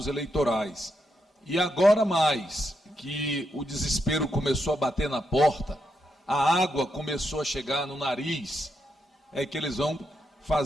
eleitorais. E agora mais, que o desespero começou a bater na porta, a água começou a chegar no nariz, é que eles vão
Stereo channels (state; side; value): normal; both; correlation 0.82